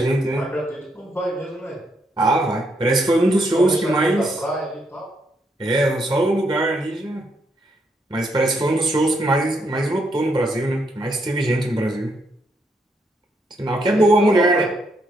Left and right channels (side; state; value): both; normal; correlation 0.76